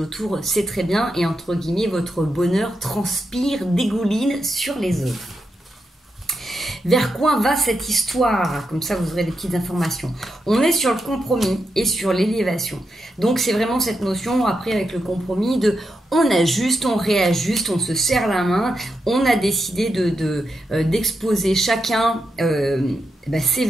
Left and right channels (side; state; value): both; normal; correlation 0.85